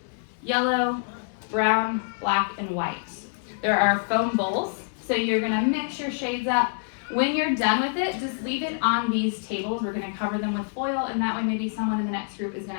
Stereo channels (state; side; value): silent; right; digital silence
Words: yellow, brown, black, and white. There are foam bowls, so you're going to mix your shades up. When you're done with it, just leave it on these tables. We're going to cover them with foil, and that way maybe someone in the next group is going